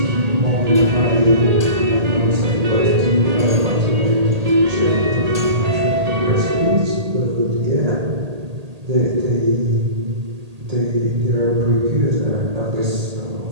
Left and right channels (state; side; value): late; left; 1.8 ms